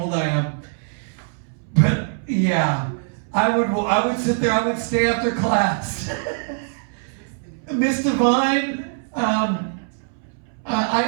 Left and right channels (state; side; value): silent; left; 64 dB below the other